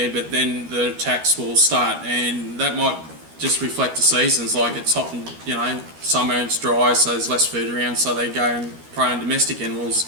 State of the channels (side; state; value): left; late; 13 ms